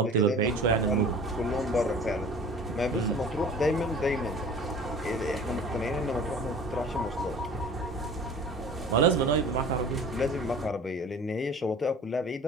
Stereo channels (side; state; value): both; normal; correlation 0.43